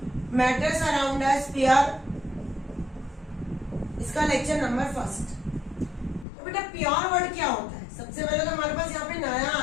matters around us pure, इसका lecture number first. तो बेटा pure word क्या होता है? सबसे पहले तो हमारे पास यहाँ पे नया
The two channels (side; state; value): right; drops out; at 6.2 s